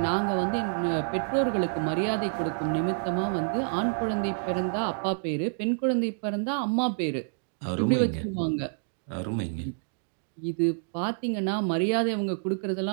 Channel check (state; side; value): silent; left; digital silence